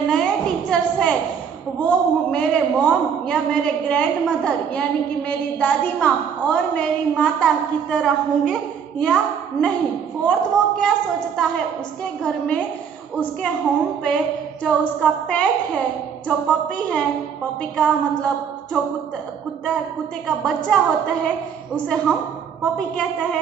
नए टीचर्स हैं वो मेरे मॉम या मेरे ग्रैंड मदर यानी कि मेरी दादी माँ और मेरी माता की तरह होंगे या नहीं। फोर्थ वो क्या सोचता है, उसके घर में उसके होम पे जो उसका पेट है, जो पपी है, पपी का मतलब जो कुत्ते का बच्चा होता है उसे हम पपी कहते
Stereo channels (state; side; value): quieter; left; 7.3 dB